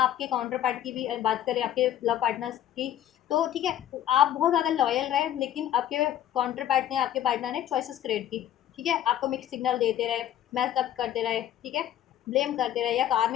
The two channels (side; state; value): right; quieter; 11.5 dB